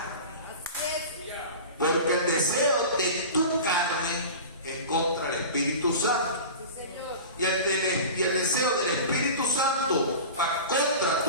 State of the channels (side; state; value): both; inverted; correlation -0.33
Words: Porque el deseo de tu carne es contra el Espíritu Santo. Y el deseo del Espíritu Santo va contra